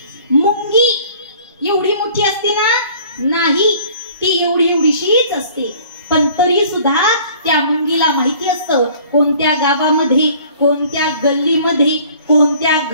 मुंगी. एवढी मोठी असते ना? नाही, ती एवढीशीच असते. पण तरी सुद्धा त्या मुंगीला माहिती असतं कोणत्या गावामध्ये, कोणत्या गल्लीमध्ये, कोणत्या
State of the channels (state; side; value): inverted; both; correlation -0.52